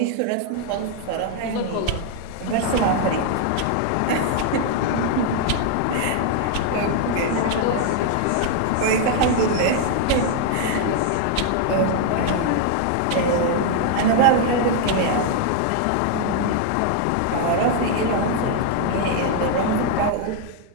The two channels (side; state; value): both; different; correlation 0.00